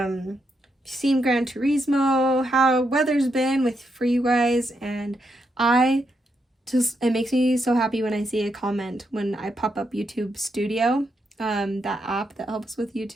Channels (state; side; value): normal; both; correlation 0.81